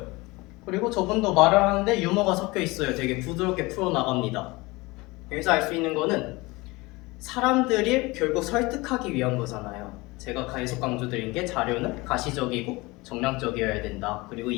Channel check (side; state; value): right; quieter; 23.0 dB